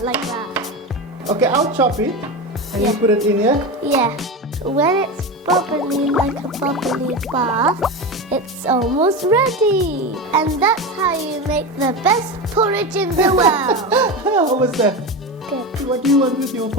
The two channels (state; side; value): normal; both; correlation 0.21